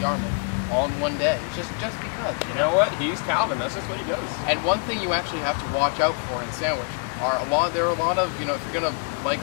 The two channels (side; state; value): right; quieter; 39.5 dB